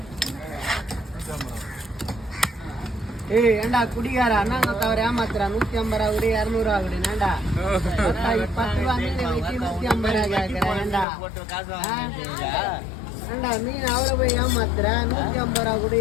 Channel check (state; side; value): drops out; right; at 11.1 s